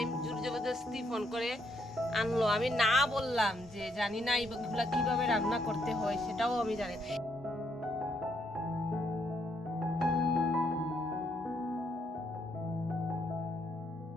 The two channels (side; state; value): both; normal; correlation 0.74